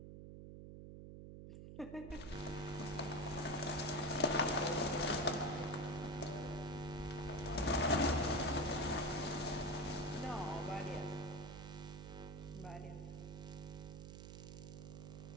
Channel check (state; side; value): noise; right; hum, 11 dB below the sound